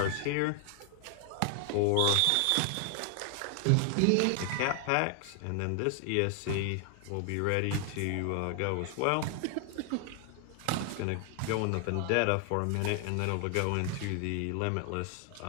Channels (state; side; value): different; both; correlation 0.00